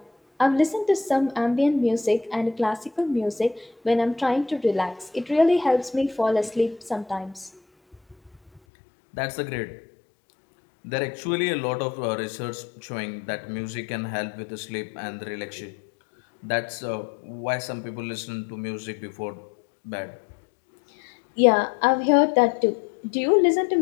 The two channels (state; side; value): drops out; right; at 8.6 s